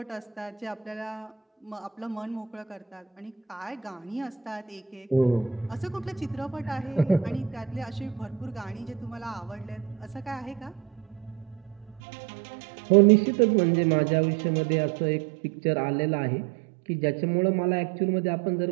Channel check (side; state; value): left; drops out; at 12.0 s